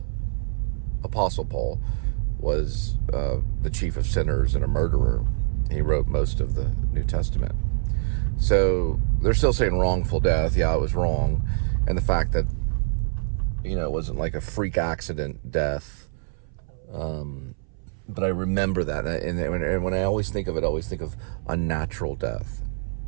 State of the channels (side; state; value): left; silent; 61 dB below the other